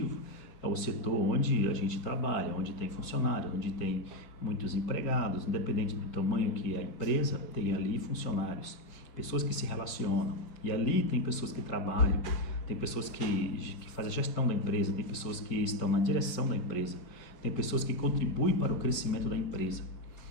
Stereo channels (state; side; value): late; right; 5.1 ms